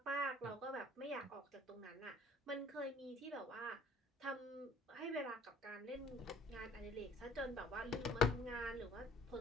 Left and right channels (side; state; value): both; normal; correlation 0.54